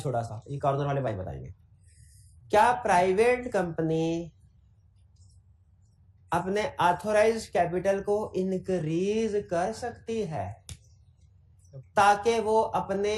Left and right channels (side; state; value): both; identical; correlation 1.00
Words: सा, ये कॉर्नर वाले भाई बताएंगे। क्या प्राइवेट कंपनी अपने ऑथोराइज्ड कैपिटल को इंक्रीज कर सकती है ताकि वो